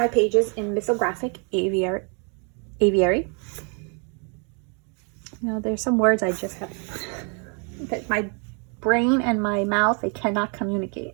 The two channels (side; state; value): left; quieter; 37.8 dB